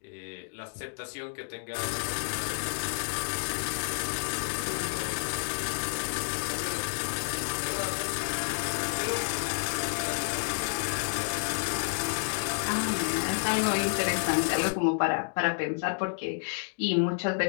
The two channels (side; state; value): right; silent; digital silence